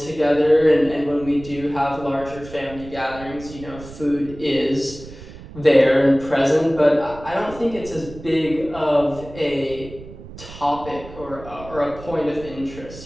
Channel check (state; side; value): noise; right; rumble, 16 dB below the sound